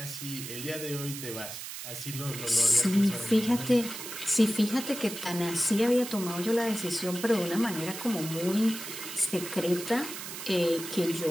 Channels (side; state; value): right; noise; hiss, 9 dB below the sound